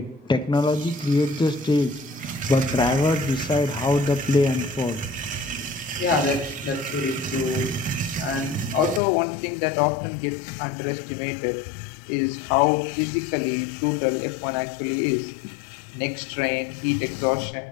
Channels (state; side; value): drops out; right; at 9.0 s